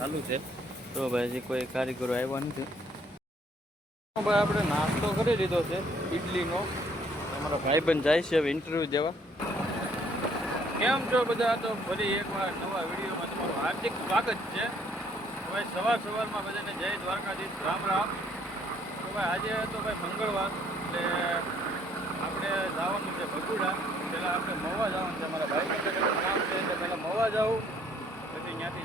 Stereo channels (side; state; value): both; normal; correlation 0.64